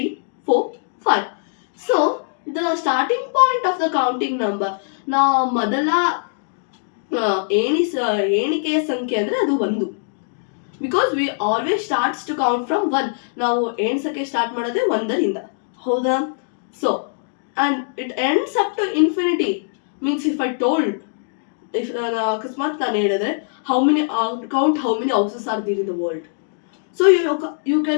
4 5. So the starting point of the counting number, now ಮೊದಲ ಎಣಿಕೆಯ ಸಂಖ್ಯೆ ಅಂದ್ರೆ ಅದು 1. Because we always starts to count from 1. ನಾವು ಎಣ್ಸಕ್ಕೆ ಸ್ಟಾರ್ಟ್ ಮಾಡೋದೇ 1ರಿಂದ, ಹೌದಾ? So and it ends up to infinity. Means if I told, if ಅಕಸ್ಮಾತ್ ನಾನು ಹೇಳಿದ್ರೆ how many how many houses are there in the world, so you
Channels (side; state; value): right; silent; digital silence